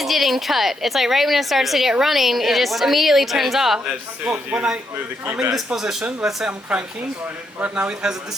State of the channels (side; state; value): both; normal; correlation 0.78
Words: getting cut. It's like right when it starts to get running, it just immediately turns off. As soon Well, as you when move the key I'm in this back. position, let's say I'm cranking. Right now it has a